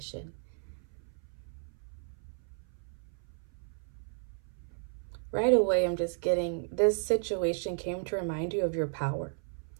Right away, I'm just getting, this situation came to remind you of your power.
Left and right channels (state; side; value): silent; left; 55 dB below the other